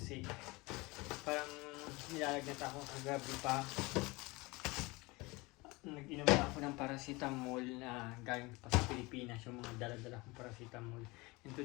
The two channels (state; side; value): quieter; right; 23.8 dB